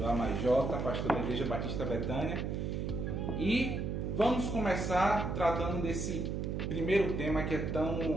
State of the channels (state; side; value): noise; right; hum, 2 dB below the sound